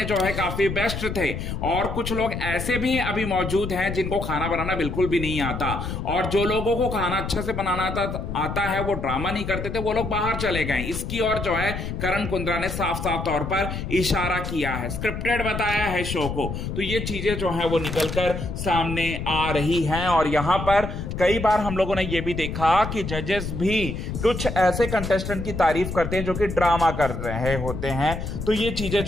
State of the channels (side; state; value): left; noise; rumble, 5 dB below the sound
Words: जो है काफी बेस्ट थे और कुछ लोग ऐसे भी अभी मौजूद हैं जिनको खाना बनाना बिल्कुल भी नहीं आता और जो लोगों को खाना अच्छा से बनाना आता है वो ड्रामा नहीं करते थे, वो लोग बाहर चले गए। इसकी और जो है करण कुंद्रा ने साफ साफ तौर पर इशारा किया है, स्क्रिप्टेड बताया है शो को। तो ये चीजें जो है वो निकलकर सामने आ रही हैं और यहां पर कई बार हम लोगों ने ये भी देखा कि जजेस भी कुछ ऐसे कंटेस्टेंट की तारीफ करते हैं जो कि ड्रामा कर रहे होते हैं। तो ये चीजें